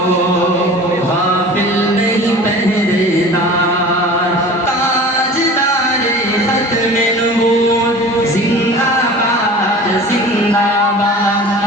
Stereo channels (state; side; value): normal; both; correlation 0.40